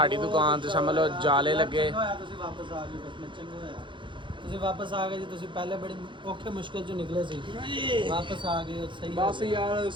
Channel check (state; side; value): late; left; 0.23 ms